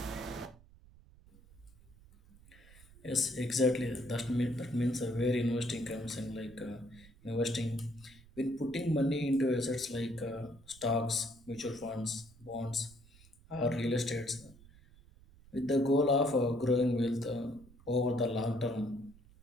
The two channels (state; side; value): noise; right; rumble, 24 dB below the sound